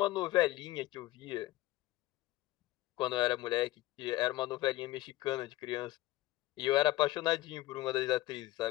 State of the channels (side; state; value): right; quieter; 17.1 dB